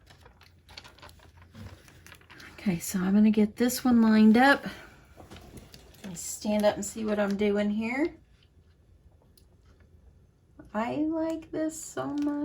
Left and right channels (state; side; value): identical; both; correlation 1.00